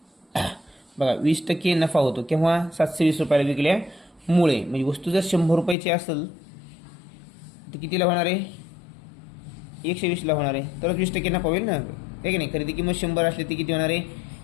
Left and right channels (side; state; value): right; drops out; at 5.8 s